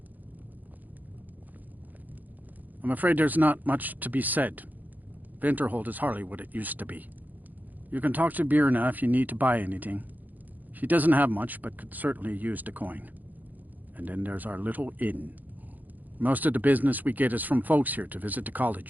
I'm afraid there's not much to be said. Winterhold is hardly what it used to be. You can talk to Birna if you need to buy anything. She doesn't have much, but could certainly use the coin. And then there's our little inn. Most of the business we get is from folks here to visit the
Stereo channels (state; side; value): late; left; 0.083 ms